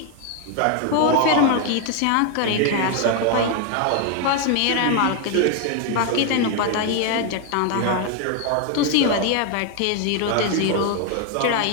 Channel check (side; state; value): both; different; correlation 0.01